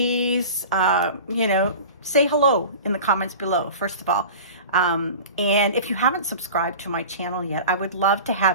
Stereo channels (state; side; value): inverted; both; correlation -0.36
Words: you know, say hello in the comments below, first of all. And if you haven't subscribed to my channel yet, I would love to